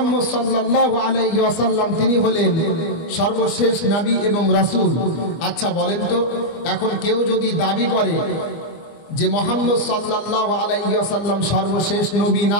সাল্লাল্লাহু আলাইহি ওয়াসাল্লাম তিনি হলেন সর্বশেষ নবী এবং রাসূল। আচ্ছা বলেন তো, এখন কেউ যদি দাবি করে যে মুহাম্মদ সাল্লাল্লাহু আলাইহি ওয়াসাল্লাম সর্বশেষ নবী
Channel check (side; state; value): right; late; 24 ms